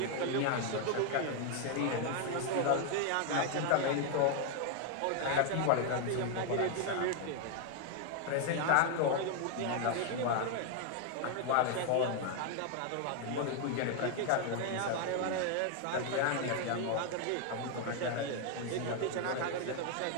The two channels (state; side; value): different; both; correlation 0.00